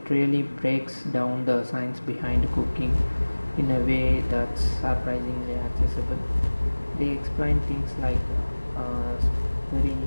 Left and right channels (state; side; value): inverted; both; correlation -1.00